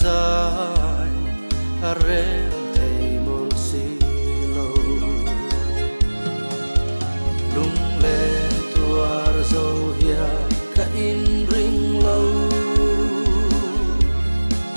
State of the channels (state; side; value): inverted; both; correlation -1.00